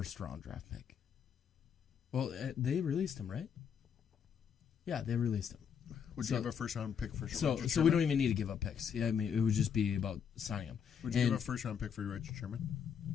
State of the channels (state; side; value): quieter; right; 7.4 dB